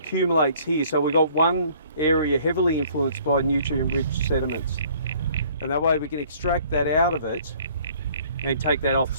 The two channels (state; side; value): inverted; both; correlation -0.57